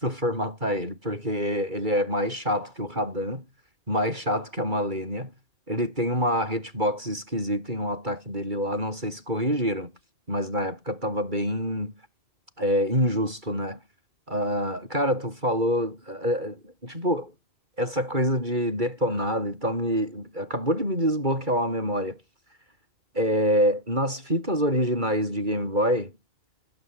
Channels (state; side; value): late; left; 2.3 ms